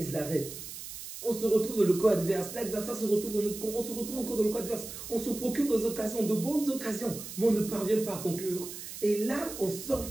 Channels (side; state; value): right; noise; hiss, 10 dB below the sound